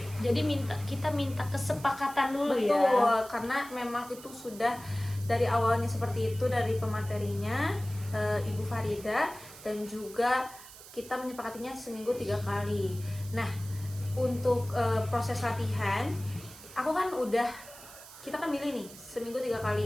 Jadi kita minta kesepakatan dulu Betul, ya. karena memang itu sudah dari awalnya seperti itu dari pematerinya Ibu Farida, dan juga kita menyepakatinya seminggu 3 kali. Nah, untuk proses latihan, kita kan milih nih seminggu 3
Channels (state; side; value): noise; right; hiss, 17 dB below the sound